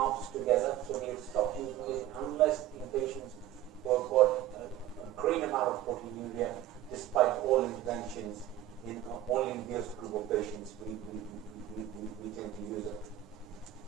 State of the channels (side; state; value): left; quieter; 13.0 dB